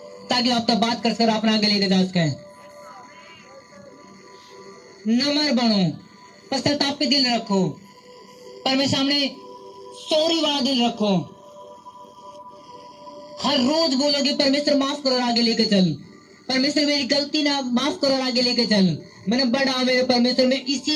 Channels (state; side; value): identical; both; correlation 1.00